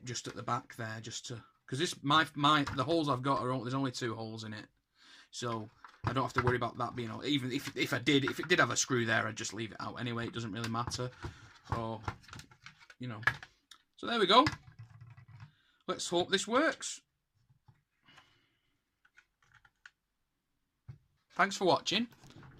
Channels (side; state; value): both; identical; correlation 1.00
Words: just at the back there, just to, because this the holes I've got there's only 2 holes in it. So I don't have to worry about that being, even if it did have a screw there, I'd just leave it out anyway. It doesn't really matter. Or, you know. So there we go. Let's hope this works. Thanks for watching.